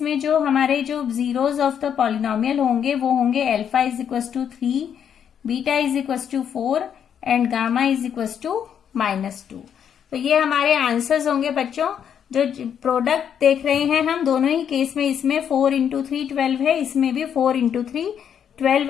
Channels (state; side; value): quieter; right; 8.4 dB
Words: में जो हमारे जो जीरोज ऑफ द पॉलिनोमियल होंगे वो होंगे alpha is equal to 3, beta is equal to 4 and gamma is equal to -2। तो ये हमारे आंसर्स होंगे बच्चों। जो प्रोडक्ट देख रहे हैं हम दोनों ही केस में, इसमें 4 × 3 12 है, इसमें भी 4 × 3 12